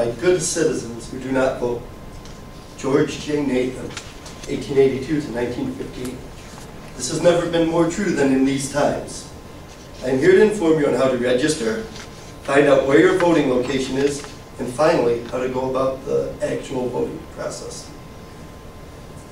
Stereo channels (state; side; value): identical; both; correlation 1.00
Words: good citizens who do not vote. George J. Nathan, 1882 to 1915. This has never been more true than in these times. I am here to inform you on how to register, find out where your voting location is, and finally, how to go about the actual voting process.